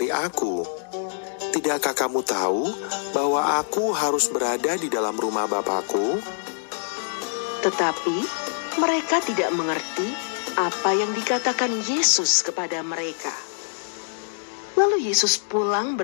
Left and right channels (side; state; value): right; silent; digital silence